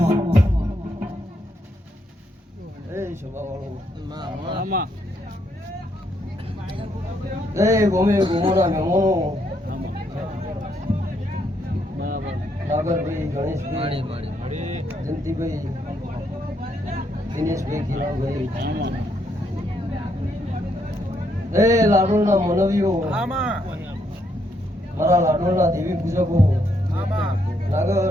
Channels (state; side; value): normal; both; correlation 0.75